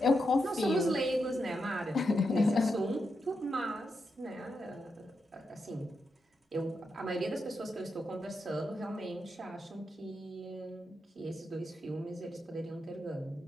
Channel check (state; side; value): normal; both; correlation 0.85